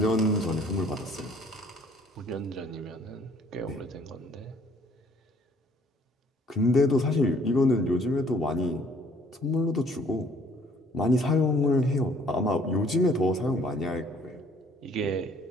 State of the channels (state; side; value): normal; both; correlation 0.59